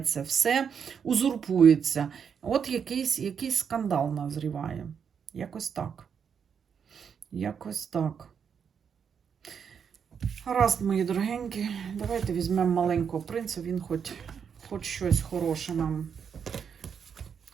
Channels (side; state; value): left; quieter; 7.1 dB